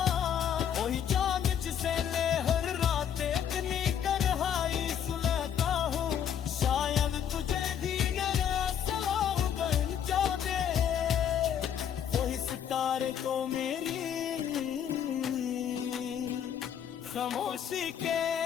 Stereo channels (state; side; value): quieter; right; 8.9 dB